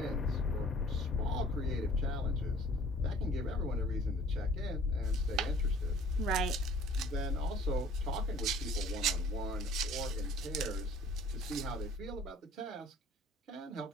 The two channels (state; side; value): normal; both; correlation 0.52